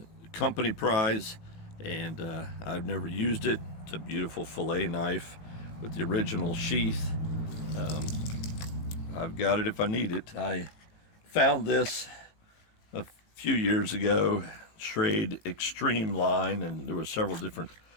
company prize, and I've never used it. It's a beautiful fillet knife with the original sheath. I've got it if I need it. I found this a few years ago, Schrade Extreme line, and there were several different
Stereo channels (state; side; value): late; right; 18 ms